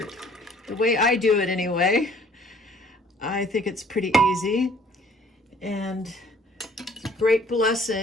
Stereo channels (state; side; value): normal; both; correlation 0.56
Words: The way I do it anyway. I think it's pretty easy. And it's a great